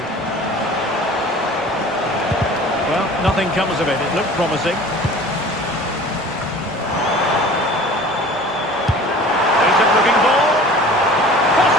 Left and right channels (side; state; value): both; normal; correlation 0.44